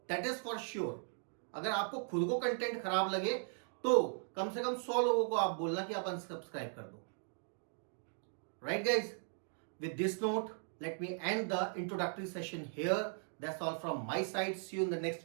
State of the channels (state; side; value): silent; left; 52 dB below the other